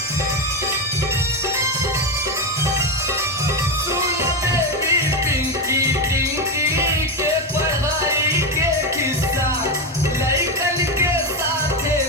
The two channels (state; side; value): normal; both; correlation 0.12